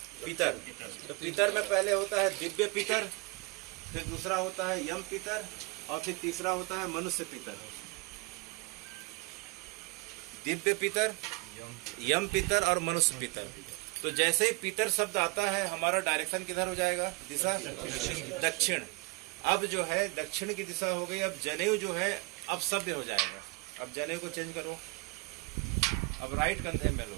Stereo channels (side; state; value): left; quieter; 26.1 dB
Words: पितर। तो पितर में पहले होता है दिव्य पितर, फिर दूसरा होता है यम पितर, और फिर तीसरा होता है मनुष्य पितर। दिव्य पितर, यम पितर और मनुष्य पितर। तो जैसे ही पितर शब्द आता है, हमारा डायरेक्शन किधर हो जाएगा? दिशा दक्षिण। अब जो है दक्षिण की दिशा हो गई। अब जनेऊ जो है अब सभ्य हो जाएगा। अब जनेऊ को चेंज करो, अब राइट कंधे में